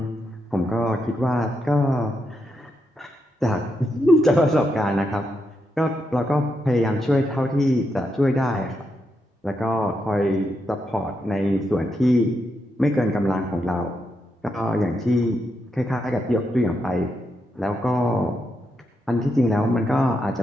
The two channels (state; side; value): normal; both; correlation 0.82